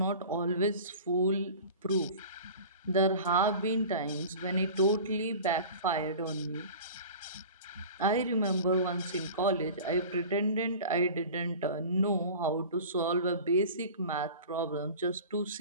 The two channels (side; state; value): both; inverted; correlation -0.38